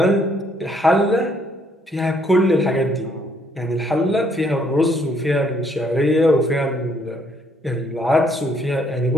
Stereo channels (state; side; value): normal; both; correlation 0.67